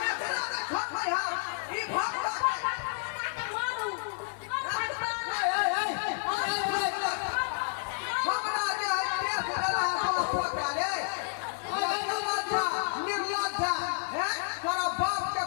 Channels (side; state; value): right; silent; digital silence